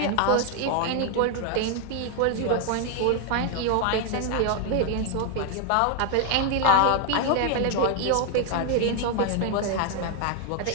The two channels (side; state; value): both; different; correlation 0.01